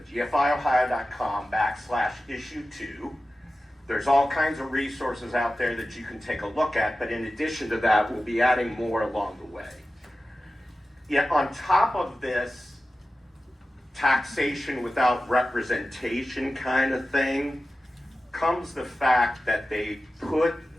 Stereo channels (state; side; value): normal; both; correlation 0.94